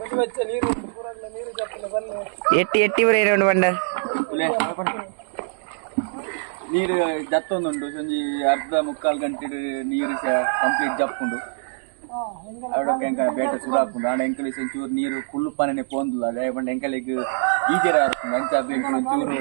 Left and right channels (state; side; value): silent; left; digital silence